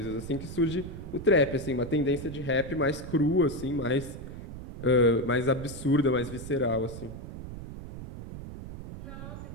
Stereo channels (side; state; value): right; noise; rumble, 10 dB below the sound